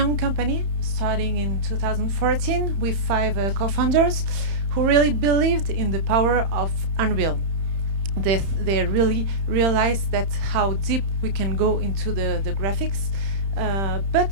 company starting in 2014 with 5 co-founders who really believed in the power of Unreal. They really realized that how deep we can go into the graphics,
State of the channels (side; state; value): left; late; 31 ms